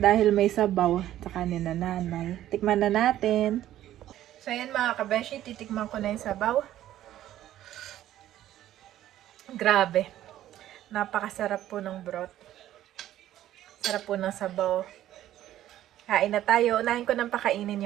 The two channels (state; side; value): quieter; left; 12.9 dB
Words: may sabaw. Saka ni na nanay. Tikman na natin. So ayan mga kabeshi, titikman ko na yung sabaw. Grabe. Napakasarap po ng broth. Sarap po ng sabaw. Kain na tayo. Unahin ko nang pakainin